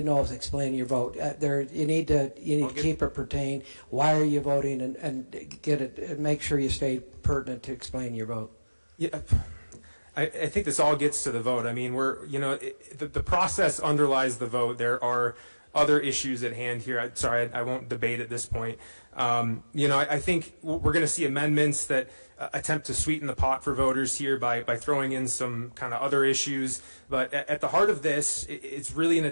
know if explaining your vote. You need to keep it pertain. Why are you voting, and get it, and make sure you stay pertinent to explain your vote. Yeah, I think this all gets to the vote. I mean, the process underlies the vote. There are other issues at hand here. I won't debate at this point. I think we're going to see amendments that attempt to sweeten the pot for voters here by throwing in some kind of other issues. But at the heart of this, it's really an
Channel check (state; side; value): inverted; both; correlation -1.00